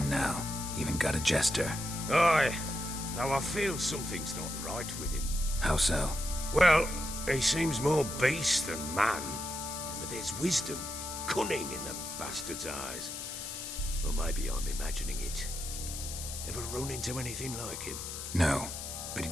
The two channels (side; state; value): left; noise; hiss, 7 dB below the sound